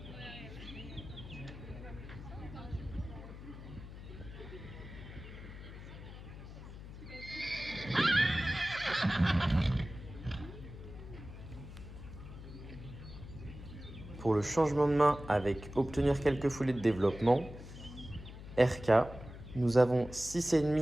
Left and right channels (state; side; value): noise; left; hum, 13 dB below the sound